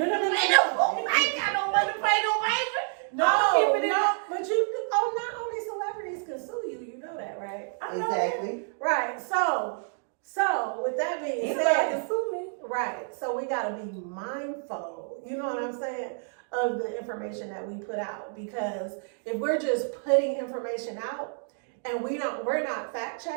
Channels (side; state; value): left; silent; 57 dB below the other